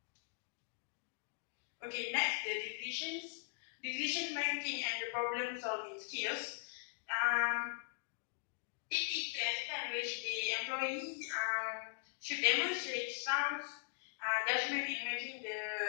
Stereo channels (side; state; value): right; silent; digital silence